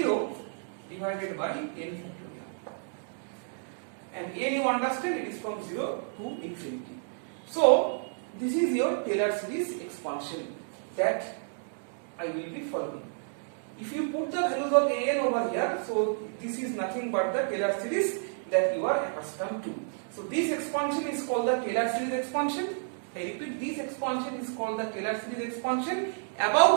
divided by n factorial, and n you understand it is from 0 to infinity. So this is your Taylor series expansion that I will be following. If you put the values of an over here, so this is nothing but the Taylor series that you are accustomed to. So this expansion is called the Taylor series expansion. I repeat, this expansion is called the Taylor series expansion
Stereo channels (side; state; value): left; silent; digital silence